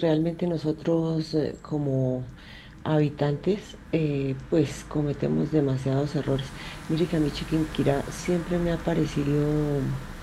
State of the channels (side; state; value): both; identical; correlation 1.00